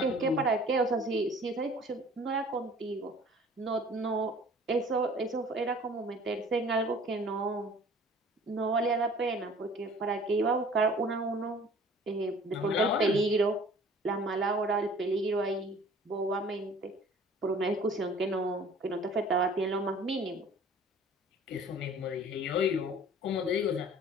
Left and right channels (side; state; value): both; normal; correlation 0.49